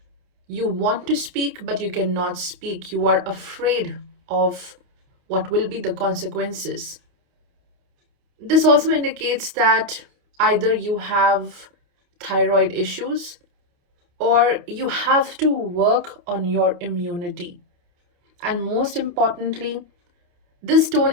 You want to speak, but you cannot speak. You are afraid of what will be the consequences. This also indicates that either you have thyroid issues or you have to work on your immunity. And most importantly, this tone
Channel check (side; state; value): left; late; 28 ms